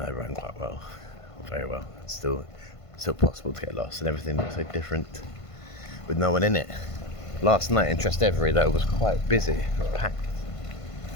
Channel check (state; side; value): late; right; 1.5 ms